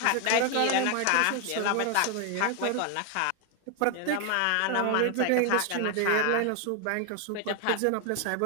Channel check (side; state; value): both; different; correlation 0.01